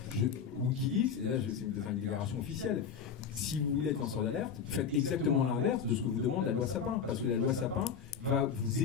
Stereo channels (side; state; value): right; quieter; 6.9 dB